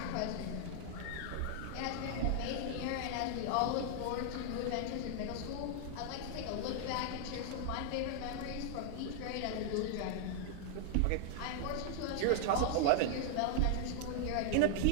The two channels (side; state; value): both; different; correlation 0.00